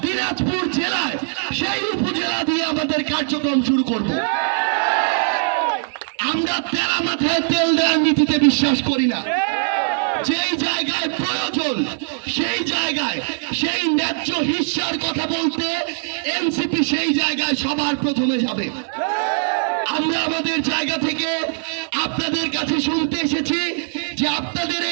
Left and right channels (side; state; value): left; silent; digital silence